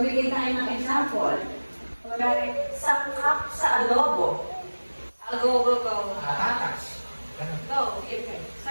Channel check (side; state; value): both; inverted; correlation -1.00